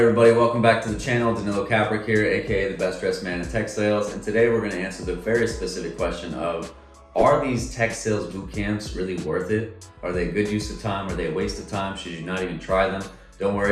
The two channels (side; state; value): both; identical; correlation 1.00